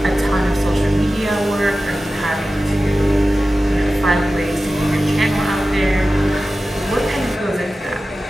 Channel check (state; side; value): normal; both; correlation 0.95